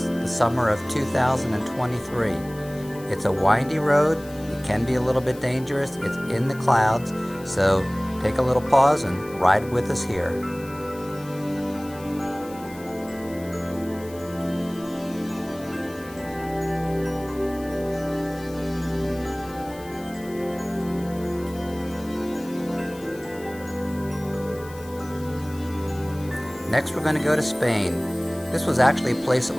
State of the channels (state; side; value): noise; left; hiss, 20 dB below the sound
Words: the summer of 2023. It's a windy road, it can be a little bit dangerous, it's in the clouds, so take a little pause and ride with us here. Next, we're going to go to Spain. This was actually a place that